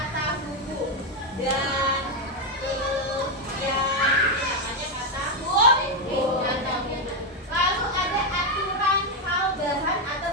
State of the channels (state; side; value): normal; both; correlation 0.04